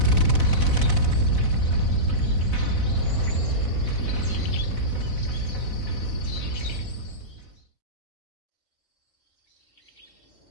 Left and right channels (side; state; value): right; late; 4.0 ms